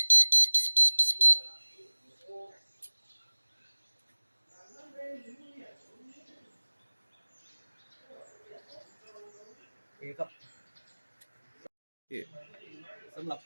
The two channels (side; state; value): both; inverted; correlation -1.00